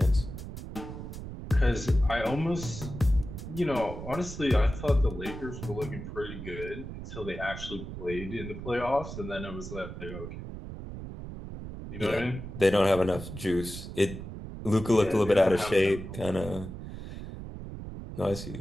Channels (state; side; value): noise; right; rumble, 9 dB below the sound